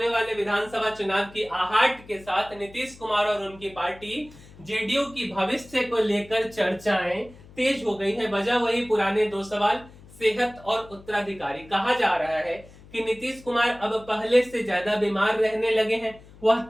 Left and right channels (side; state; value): left; noise; hum, 22 dB below the sound